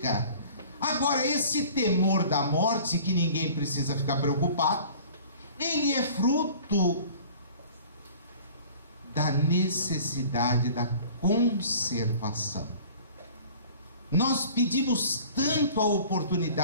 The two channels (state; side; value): inverted; both; correlation -0.46